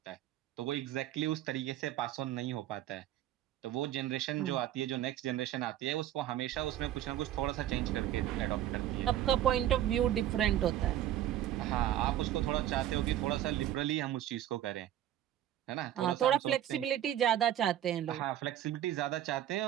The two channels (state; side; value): quieter; left; 12.1 dB